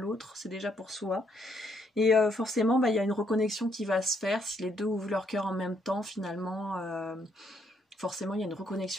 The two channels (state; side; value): normal; both; correlation 0.72